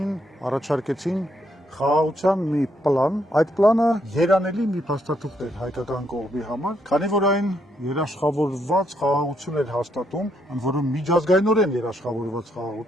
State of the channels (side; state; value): both; normal; correlation 0.75